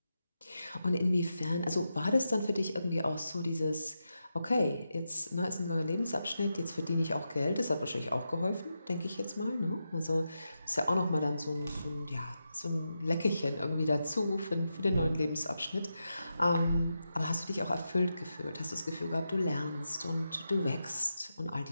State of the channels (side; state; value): both; inverted; correlation -0.88